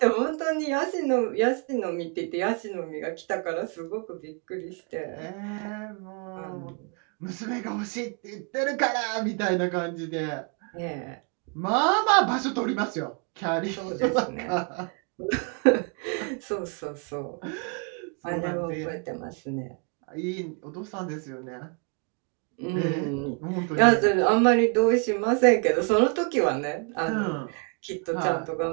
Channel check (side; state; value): left; quieter; 38.2 dB